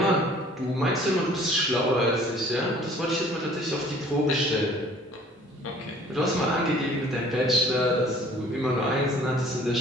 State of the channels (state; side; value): normal; both; correlation 0.53